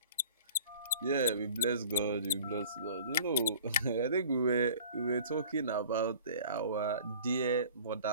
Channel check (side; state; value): both; inverted; correlation -0.47